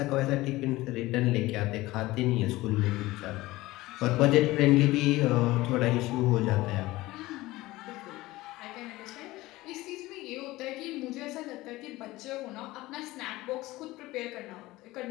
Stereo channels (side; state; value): right; quieter; 18.8 dB